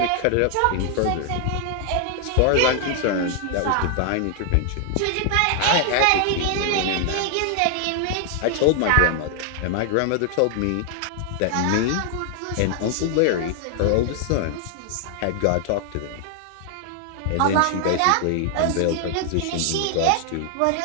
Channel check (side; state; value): both; different; correlation 0.00